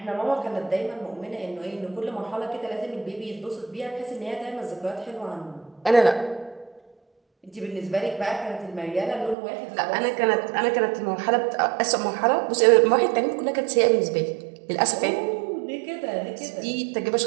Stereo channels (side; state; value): left; drops out; at 9.3 s